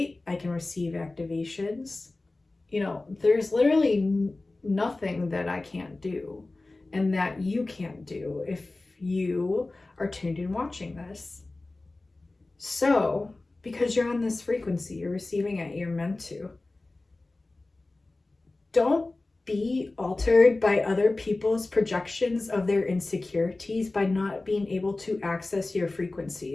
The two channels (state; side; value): quieter; right; 3.1 dB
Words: I can receive activations. You know, there's literally nothing that I can't do and that you can't do if you are tuned in watching this. So, because you're on this frequency, you're receiving it, you're meant to. Don't be altered by other people's projections of their insecurities by not being able to access your